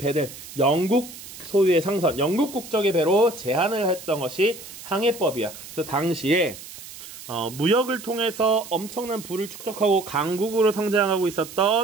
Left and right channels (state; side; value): noise; right; hiss, 15 dB below the sound